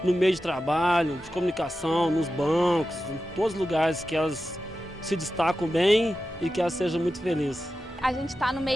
no meio de trabalho, de comunicação, nos bancos, em todos os lugares que elas se destacam bem e que elas sejam muito felizes. A gente está no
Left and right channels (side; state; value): both; normal; correlation 0.92